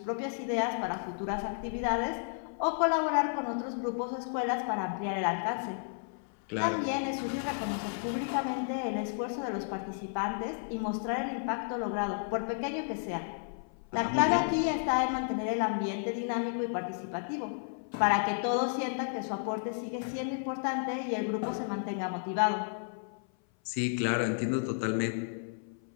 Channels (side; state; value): right; silent; 56 dB below the other